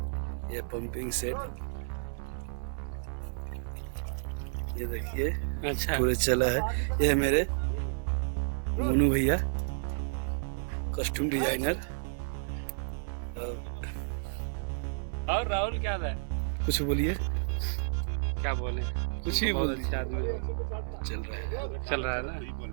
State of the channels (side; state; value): left; silent; digital silence